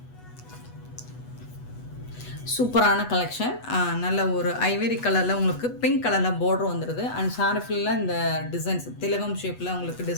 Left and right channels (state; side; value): late; right; 8.2 ms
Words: சூப்பரான கலெக்ஷன். நல்ல ஒரு ஐவரி கலரில் உங்களுக்கு பிங்க் கலரில் பார்டர் வந்துடுது. அண்ட் சாரி ஃபுல்லாக இந்த டிசைன்ஸ் திலகம் ஷேப்பில் உங்களுக்கு